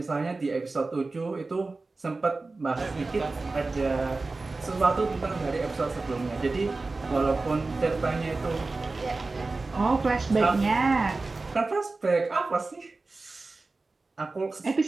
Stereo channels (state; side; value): quieter; left; 3.5 dB